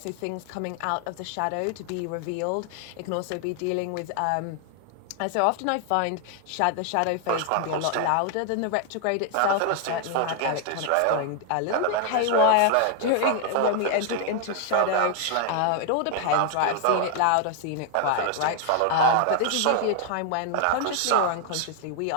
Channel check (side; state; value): both; different; correlation 0.00